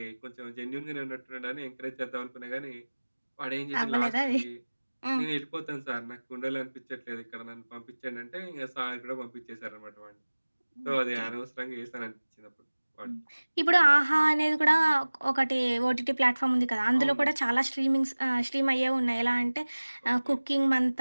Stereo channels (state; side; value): inverted; both; correlation -1.00